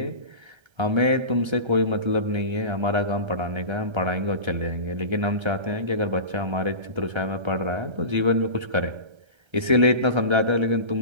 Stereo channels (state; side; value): late; left; 1.3 ms